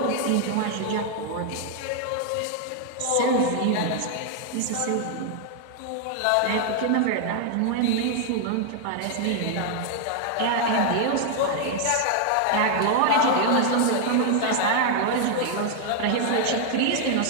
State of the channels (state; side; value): different; both; correlation 0.00